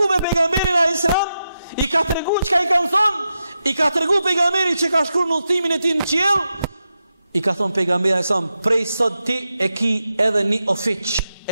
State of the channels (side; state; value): both; inverted; correlation -0.88